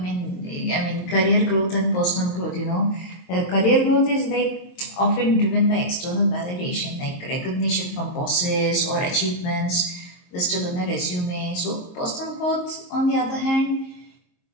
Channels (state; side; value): late; right; 22 ms